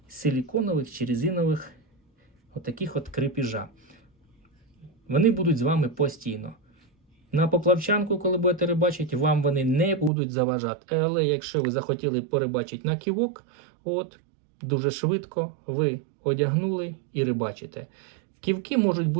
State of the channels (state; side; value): drops out; left; at 10.1 s